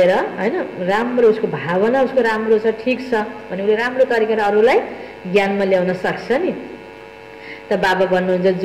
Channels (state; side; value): identical; both; correlation 1.00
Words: हैन, राम्रो उसको भावना उसको राम्रो छ, ठिक छ भने उसले राम्रो तरिकाले अरूलाई ज्ञानमा ल्याउन सक्छ नि। त बाबा भन्नुहुन्छ